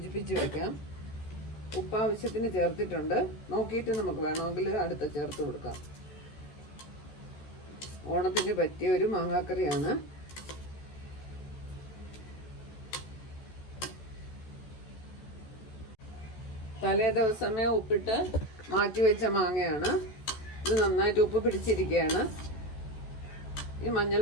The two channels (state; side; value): late; right; 14 ms